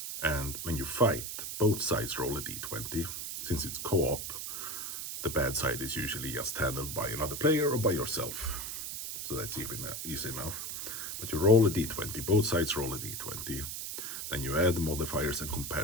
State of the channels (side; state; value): right; noise; hiss, 5 dB below the sound